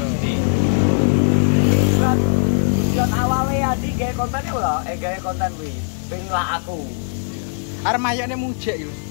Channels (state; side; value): silent; right; digital silence